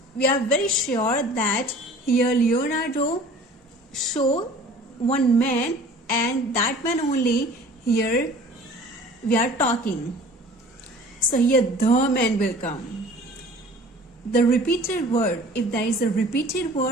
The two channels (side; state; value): both; normal; correlation 0.46